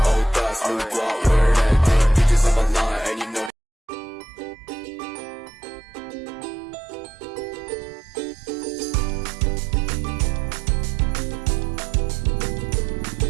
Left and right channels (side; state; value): left; drops out; at 3.5 s